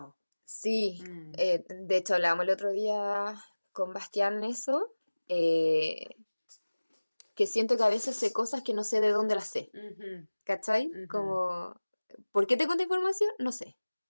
Sí, Mm. de hecho hablábamos el otro día con Bastián eso, que siento que a veces sé cosas que no sé de dónde las sé, Ujú. ¿cachai? Ujú. Como, ¿por qué te cuento información? No sé,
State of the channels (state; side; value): inverted; both; correlation -1.00